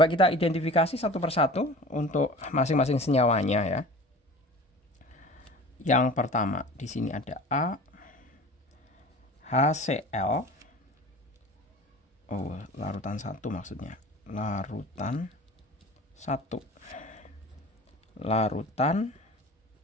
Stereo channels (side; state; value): both; normal; correlation 0.40